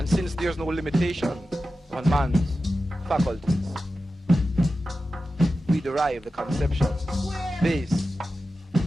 since there's no limitation on man's faculties, we derive the conception based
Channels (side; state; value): both; normal; correlation 0.93